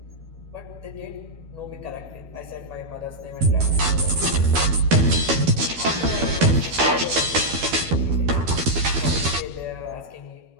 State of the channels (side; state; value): left; late; 12 ms